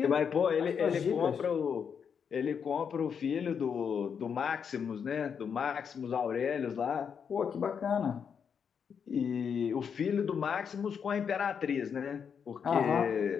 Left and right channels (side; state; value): right; quieter; 7.0 dB